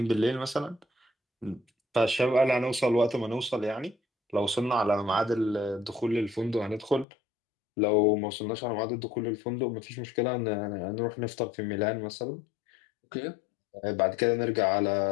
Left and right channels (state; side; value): drops out; right; at 7.1 s